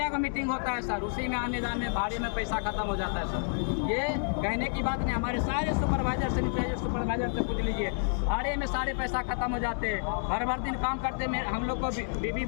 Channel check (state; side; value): silent; right; digital silence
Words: का मीटिंग होता है सर, उसी में आने जाने भाड़े में पैसा खत्म हो जाता है सर। ये कहने की बात नहीं। हमारे सारे सुपरवाइजर सैनिटाइजर सुपरवाइजर से पूछ लीजिए, भाड़े में सारे पैसा खत्म हो जाते हैं। भर दिन काम करते में हम लोग को बीवी